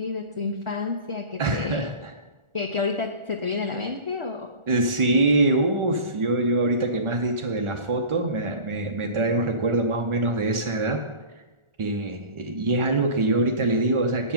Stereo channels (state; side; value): late; left; 1.4 ms